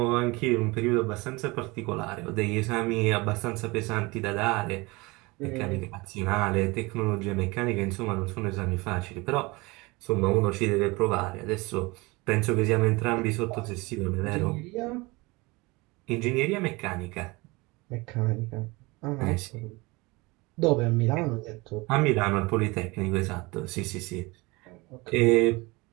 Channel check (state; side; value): quieter; left; 24.3 dB